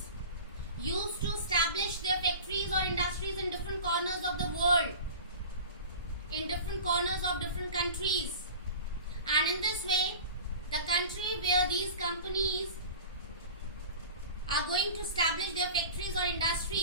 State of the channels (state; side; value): inverted; both; correlation -0.36